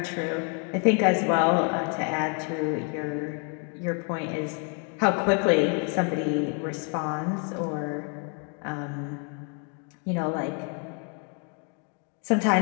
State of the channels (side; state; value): right; quieter; 38.3 dB